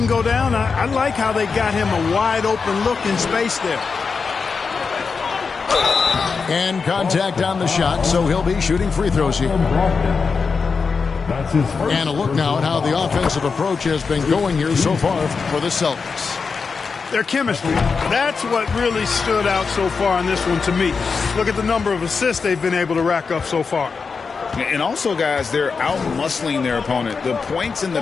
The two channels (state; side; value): quieter; right; 5.1 dB